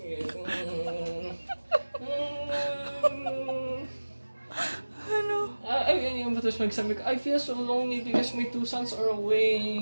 Ano? Tapos magsabi ko, I feel so lonely because my 2 sons are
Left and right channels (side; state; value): both; inverted; correlation -1.00